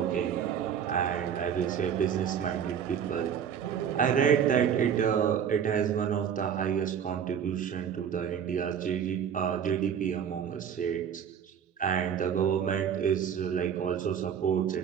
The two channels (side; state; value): left; quieter; 8.2 dB